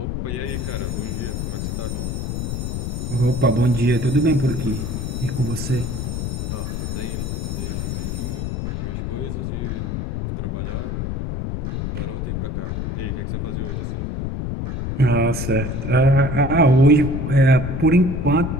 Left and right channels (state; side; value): noise; left; rumble, 3 dB below the sound